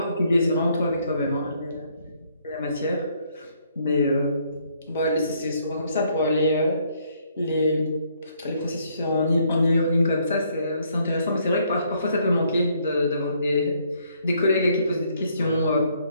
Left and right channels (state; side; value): inverted; both; correlation -0.69